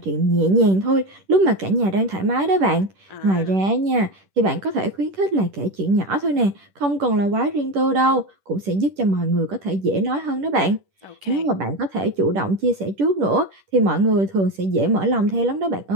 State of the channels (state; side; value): late; left; 10 ms